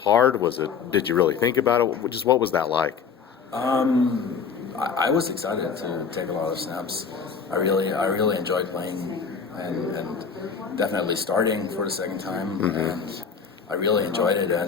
Did you really think about it? Just what was that like? I was excited to take a lot of snaps. I really enjoyed playing and definitely starting for the second time. And I really enjoyed it,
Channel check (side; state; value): right; quieter; 6.1 dB